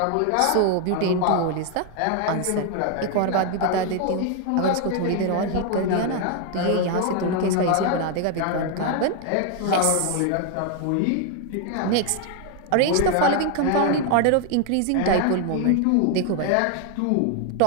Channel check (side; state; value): both; different; correlation 0.01